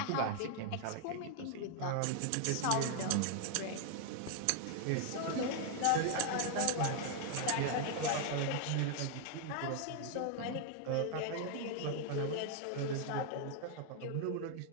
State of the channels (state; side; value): different; both; correlation 0.00